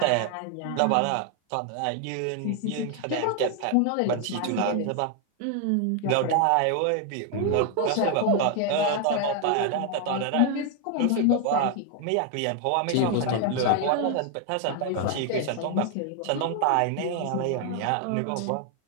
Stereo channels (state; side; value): different; both; correlation 0.00